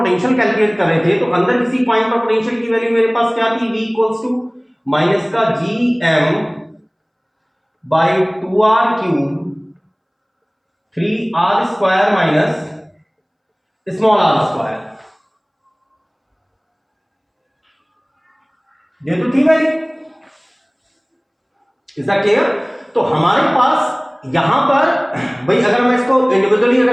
कैलकुलेट कर रहे थे तो अंदर किसी पॉइंट पर पोटेंशियल की वैल्यू मेरे पास क्या थी? V इक्वल्स टू माइनस का GM by 2R cube 3R square minus small r square. ये तो थी वैल्यू। Is that clear? तो हमारे पास यहां पर भाई अगर मैं इसको इंडिविजुअली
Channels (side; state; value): both; identical; correlation 1.00